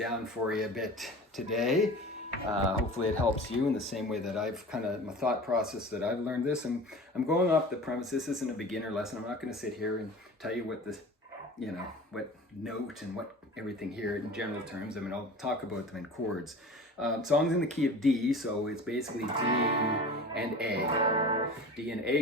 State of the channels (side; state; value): both; normal; correlation 0.38